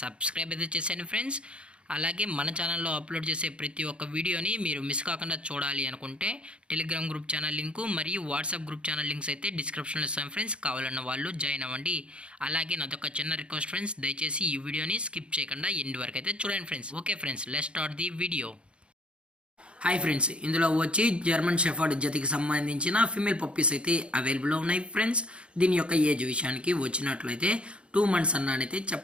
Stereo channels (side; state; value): left; late; 0.058 ms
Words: సబ్స్క్రైబ్ అయితే చేసేయండి ఫ్రెండ్స్. అలాగే మన ఛానల్లో అప్లోడ్ చేసే ప్రతి ఒక్క వీడియోని మీరు మిస్ కాకుండా చూడాలి అనుకుంటే టెలిగ్రామ్ గ్రూప్ ఛానల్ లింకు మరియు వాట్సాప్ గ్రూప్ ఛానల్ లింక్స్ అయితే డిస్క్రిప్షన్లో ఇస్తాం ఫ్రెండ్స్. కావాలన్న వాళ్ళు జాయిన్ అవ్వండి. అలాగే నాదొక చిన్న రిక్వెస్ట్ ఫ్రెండ్స్, దయచేసి ఈ వీడియోని స్కిప్ చేయకుండా ఎండ్ వరకు అయితే చూడండి friends. Okay friends, let's start the video. Hi friends, ఇందులో వచ్చి జర్మన్ షెఫర్డ్ జతికి సంబంధించిన ఫీమేల్ పప్పీస్ అయితే అవైలబుల్లో ఉన్నాయి ఫ్రెండ్స్. దీని యొక్క ఏజ్ విషయానికి వచ్చినట్లయితే 2 months అన్నైతే